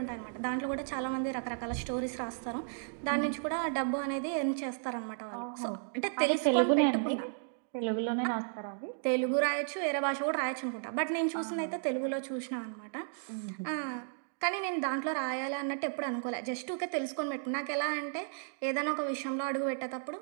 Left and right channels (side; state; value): left; silent; digital silence